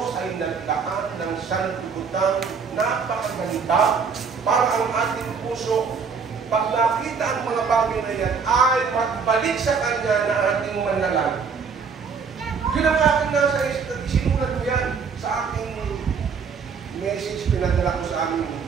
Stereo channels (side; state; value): left; quieter; 5.7 dB